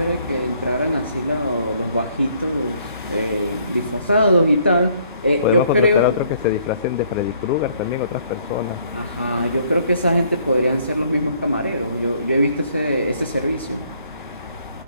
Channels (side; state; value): both; inverted; correlation -0.64